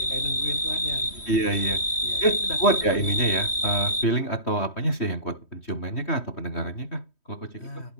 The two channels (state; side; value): late; right; 3.1 ms